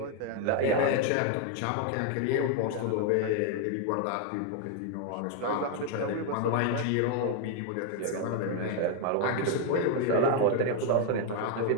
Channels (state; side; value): different; both; correlation 0.00